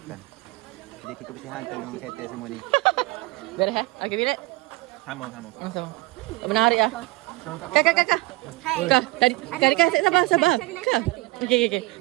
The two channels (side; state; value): left; quieter; 23.1 dB